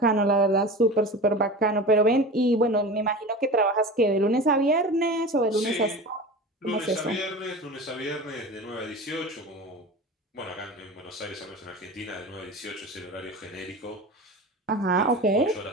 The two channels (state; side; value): normal; both; correlation 0.32